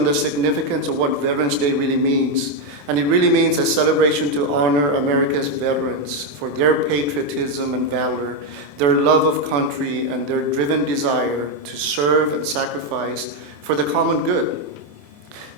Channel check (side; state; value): left; late; 28 ms